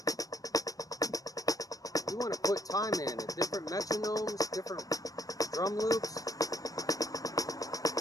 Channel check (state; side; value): late; right; 0.17 ms